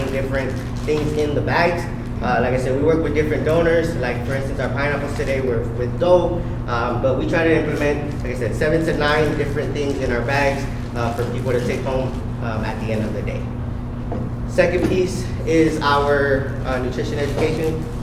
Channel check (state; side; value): identical; both; correlation 1.00